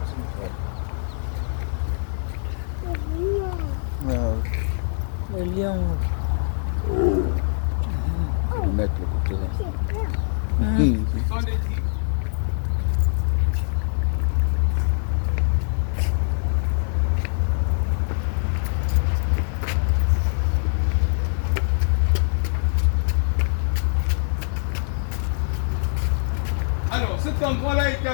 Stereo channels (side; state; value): right; silent; digital silence